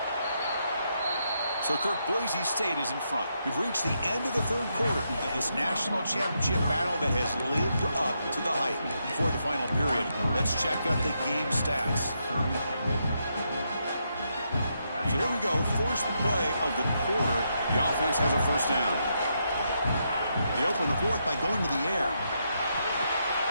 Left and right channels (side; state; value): both; inverted; correlation -0.80